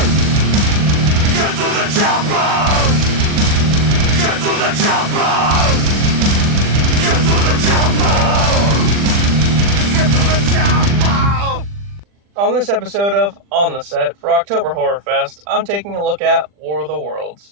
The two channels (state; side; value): late; left; 40 ms